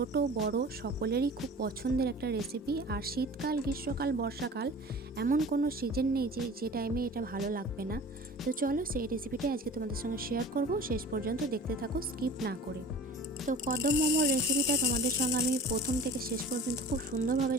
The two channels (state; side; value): normal; both; correlation 0.42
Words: বড় সকলেরই খুব পছন্দের একটা রেসিপি। আর শীতকাল, গ্রীষ্মকাল, বর্ষাকাল এমন কোনো সিজন নেই যে টাইমে এটা ভালো লাগবে না। তো চলো সেই রেসিপিটাই আজকে তোমাদের সঙ্গে শেয়ার করব। শেষ পর্যন্ত দেখতে থাকো, স্কিপ না করে। তো কদম মোমোর রেসিপিটা তোমাদের সঙ্গে আমি প্রথম থেকে শেষ পর্যন্ত খুব সুন্দরভাবে